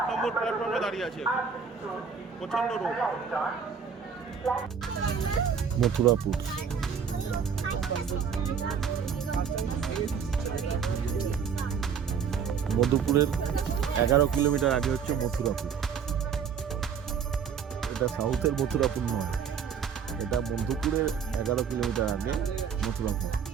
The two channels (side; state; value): left; quieter; 6.7 dB